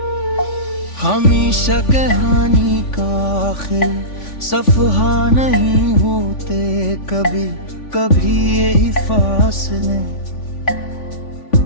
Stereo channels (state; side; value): late; right; 3.5 ms